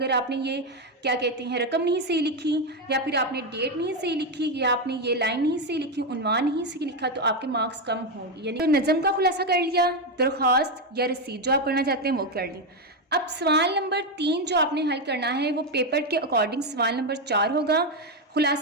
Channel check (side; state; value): both; normal; correlation 0.07